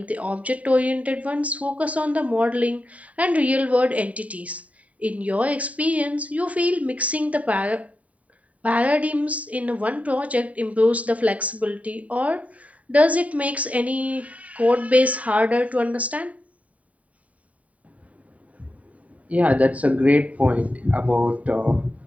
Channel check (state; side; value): late; left; 0.068 ms